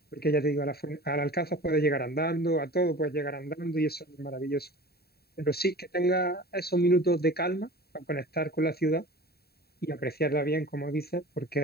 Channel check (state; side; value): late; right; 0.46 ms